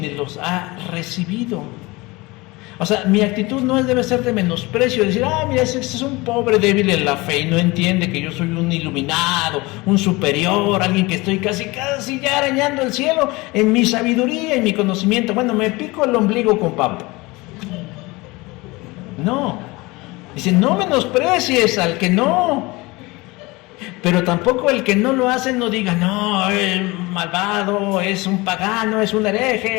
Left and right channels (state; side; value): quieter; right; 23.0 dB